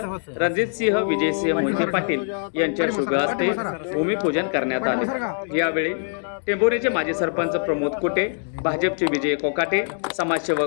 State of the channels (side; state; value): right; silent; digital silence